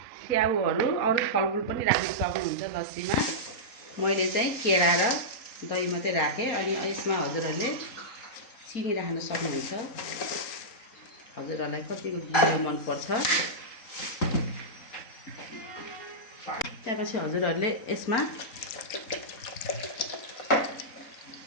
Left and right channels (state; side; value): late; right; 3.9 ms